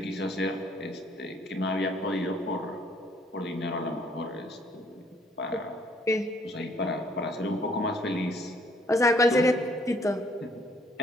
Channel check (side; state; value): both; normal; correlation 0.63